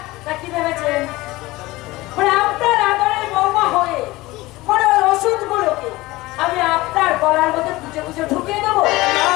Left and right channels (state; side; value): quieter; right; 19.8 dB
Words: তা কি ভেবেছেন? আপনার আদরের বৌমা হয়ে ওষুধগুলোকে আমি আপনার গলার মধ্যে গুজে গুজে ঢুকিয়ে দেবো? না